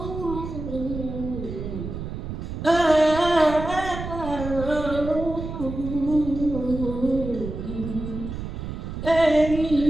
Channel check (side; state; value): right; noise; rumble, 7 dB below the sound